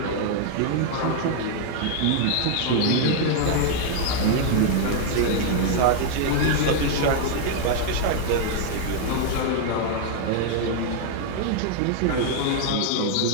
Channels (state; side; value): different; both; correlation 0.00